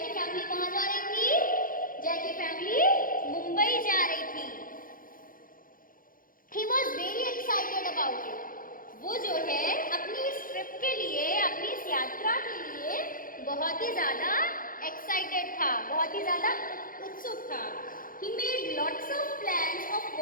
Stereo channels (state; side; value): late; right; 0.40 ms